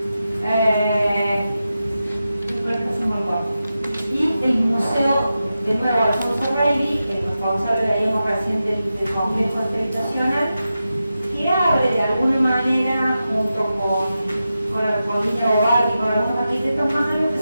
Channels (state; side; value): inverted; both; correlation -0.91